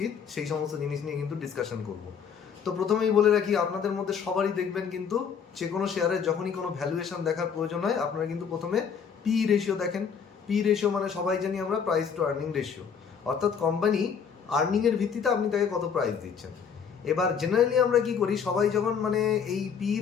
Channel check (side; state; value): right; quieter; 6.9 dB